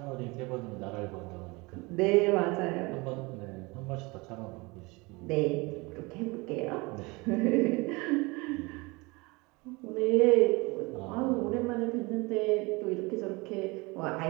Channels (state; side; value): quieter; left; 25.3 dB